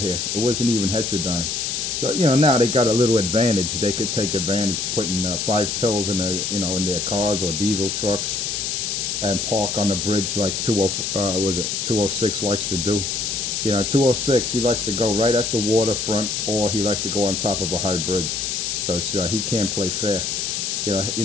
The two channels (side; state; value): left; noise; hiss, 1 dB below the sound